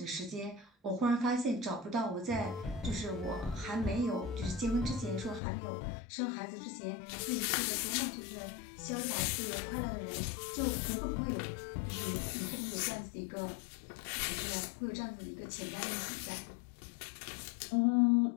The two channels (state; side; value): drops out; right; at 5.4 s